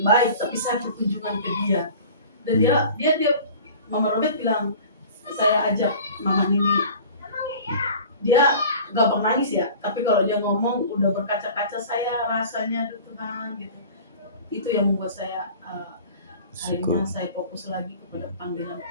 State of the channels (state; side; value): inverted; both; correlation -0.42